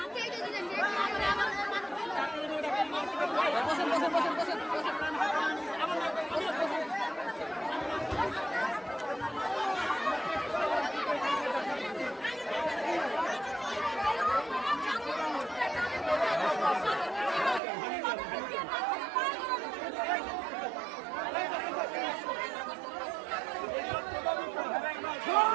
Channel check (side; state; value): left; drops out; at 17.6 s